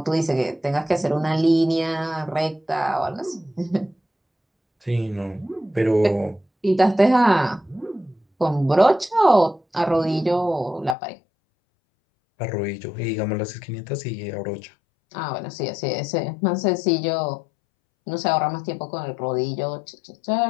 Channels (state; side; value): drops out; right; at 11.0 s